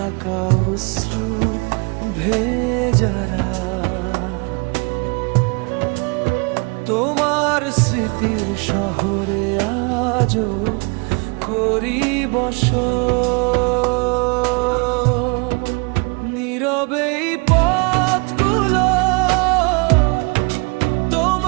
অশ্রু ভেজারা, তোমার স্মৃতির শহরে আজও করি বসত। নীরবেই পথগুলো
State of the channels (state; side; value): quieter; left; 31.4 dB